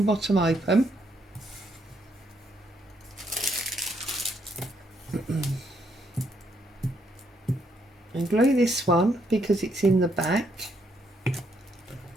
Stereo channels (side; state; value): both; normal; correlation 0.74